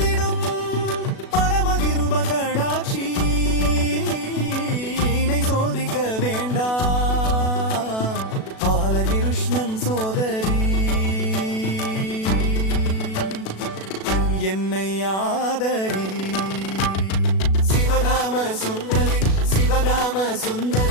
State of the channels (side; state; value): right; late; 37 ms